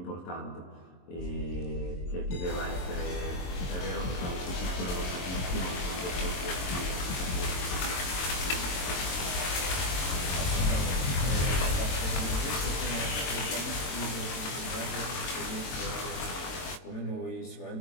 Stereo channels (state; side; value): late; right; 22 ms